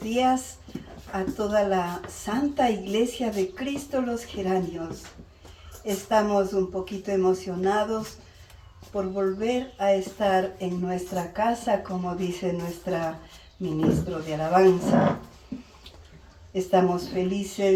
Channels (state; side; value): identical; both; correlation 1.00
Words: a toda la Santa Iglesia de Cristo los Geranios. Estamos un poquito emocionados por volver a estar en nuestra casa, como dice nuestra ministro de alabanza. Estamos